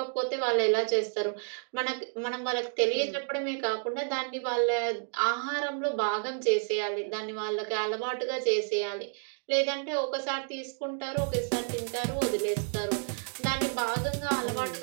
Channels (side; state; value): left; silent; 58 dB below the other